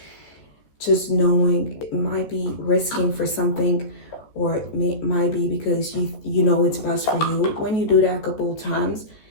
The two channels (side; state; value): right; late; 14 ms